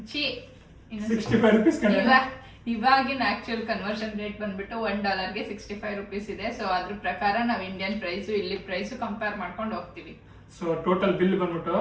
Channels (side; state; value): both; identical; correlation 1.00